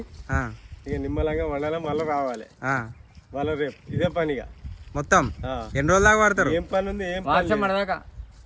ఇక నిమ్మలంగా వండాలి. మళ్ళీ రావాలి మళ్ళీ రేపు ఇదే పనిగా మొత్తం ఎన్ని రోజుల దాకా పడతారు? ఏం పని ఉంది? ఏం వర్షం పడదాకా,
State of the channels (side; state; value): both; identical; correlation 1.00